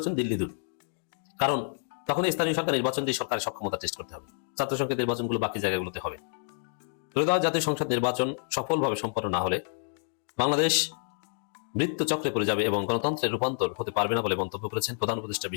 দিল্লি দূর। কারণ তখন স্থানীয় সরকার নির্বাচন দিয়ে সরকারের সক্ষমতা টেস্ট করতে হবে। ছাত্র সংসদ নির্বাচনগুলো বাকি জায়গাগুলোতে হবে। ত্রয়োদশ জাতীয় সংসদ নির্বাচন সফলভাবে সম্পন্ন না হলে বাংলাদেশ মৃত্যুচক্রে পড়ে যাবে এবং গণতন্ত্রের রূপান্তর হতে পারবে না বলে মন্তব্য করেছেন প্রধান উপদেষ্টা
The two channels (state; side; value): silent; right; digital silence